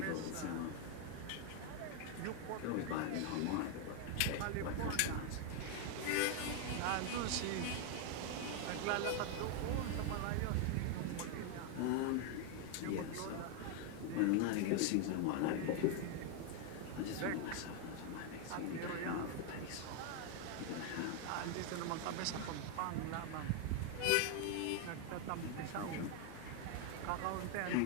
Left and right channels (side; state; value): both; different; correlation 0.01